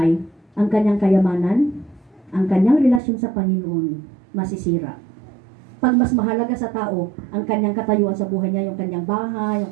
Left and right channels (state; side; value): drops out; left; at 3.0 s